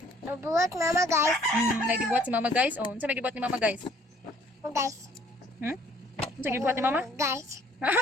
Mabuhat mama guys. Nagibuhat si mama guys. Oh, unsa may gibuhat ni mama guys? Guys. Unsa gibuhat ni mama? Guys. Ha?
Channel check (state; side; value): normal; both; correlation 0.59